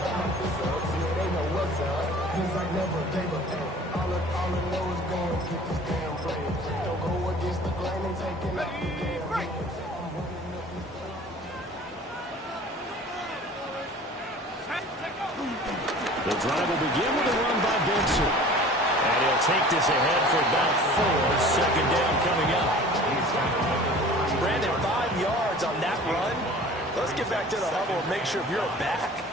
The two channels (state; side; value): normal; both; correlation 0.45